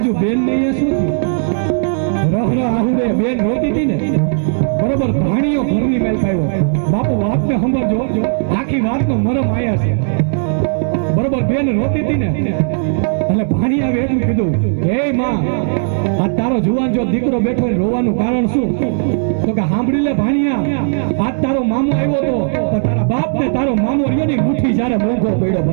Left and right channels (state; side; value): silent; left; digital silence